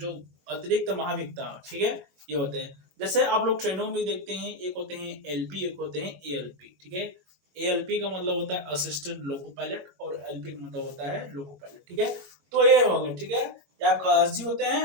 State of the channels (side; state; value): left; late; 21 ms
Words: महाविक्ता, ठीक है, ये होते हैं। जैसे आप लोग ट्रेनों में देखते हैं, एक होते हैं एलपी, एक होते हैं एएलपी, ठीक है। एएलपी का मतलब होता है असिस्टेंट लोको पायलट और एलपी का मतलब होता है लोको पायलट, ठीक है। तो ये हो गए, ठीक है, ये आपका एसजी होते